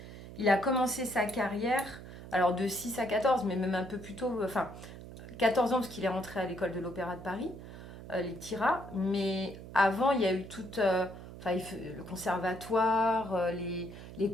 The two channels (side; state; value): right; noise; hum, 14 dB below the sound